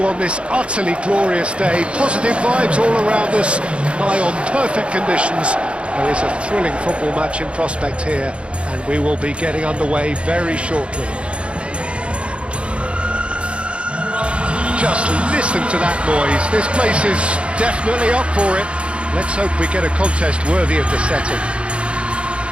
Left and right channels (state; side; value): late; left; 0.059 ms